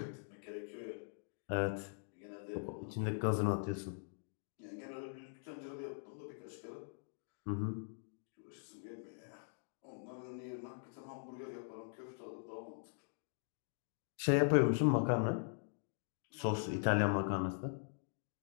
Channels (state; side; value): silent; right; digital silence